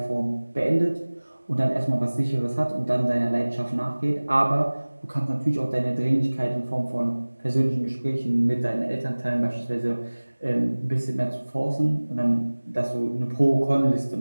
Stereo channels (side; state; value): both; inverted; correlation -1.00